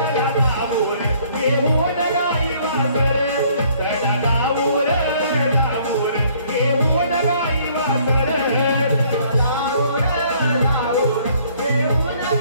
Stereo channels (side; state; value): both; inverted; correlation -0.61